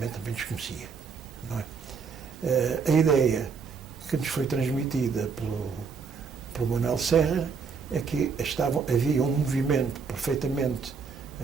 também desconhecia. Não é? A ideia que nos foi transmitida pelo Manuel Serra é que havia um movimento perfeitamente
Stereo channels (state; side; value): quieter; left; 5.6 dB